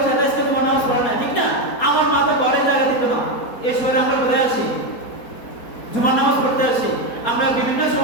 সাথে আজকে জুমার নামাজ পড়ে নাই, ঠিক না? আমার মা তো ঘরে জায়গা দিত না। এই সময় আমরা কোথায় আসি? জুমার নামাজ পড়তে আসি। আমরা বিভিন্ন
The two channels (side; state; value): right; late; 4.2 ms